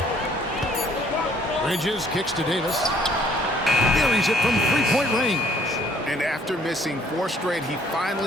Bridges kicks to Davis. Buries it from 3-point range. And after missing 4 straight, he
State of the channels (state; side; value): normal; both; correlation 0.61